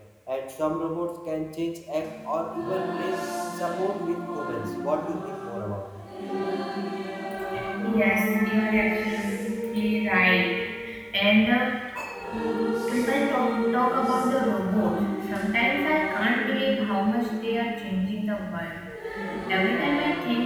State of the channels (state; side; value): identical; both; correlation 1.00